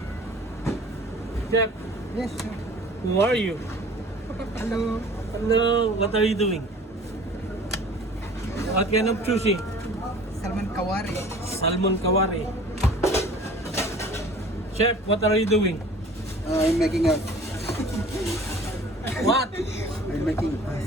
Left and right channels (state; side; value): normal; both; correlation 0.46